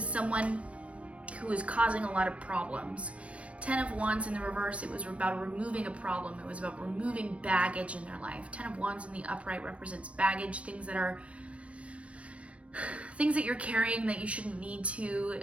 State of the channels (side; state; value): left; late; 0.063 ms